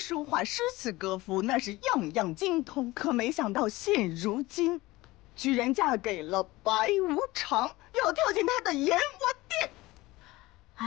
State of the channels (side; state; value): right; quieter; 19.8 dB